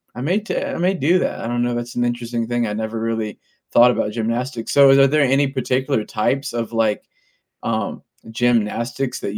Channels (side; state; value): both; identical; correlation 1.00